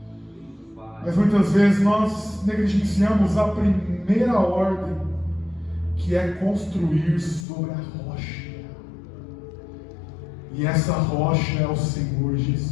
Mas muitas vezes nós negligenciamos a primeira ordem, que é construir sobre a rocha. E essa rocha é o Senhor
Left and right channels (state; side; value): drops out; right; at 7.5 s